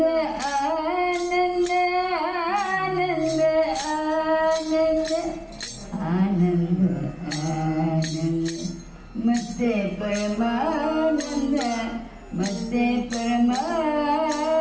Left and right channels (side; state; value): both; identical; correlation 1.00